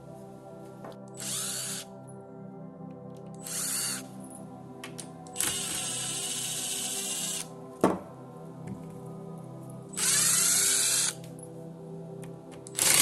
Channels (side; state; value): both; identical; correlation 1.00